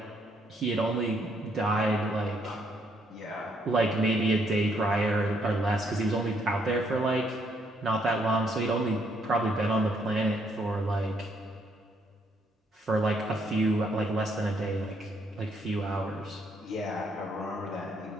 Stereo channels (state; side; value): normal; both; correlation 0.71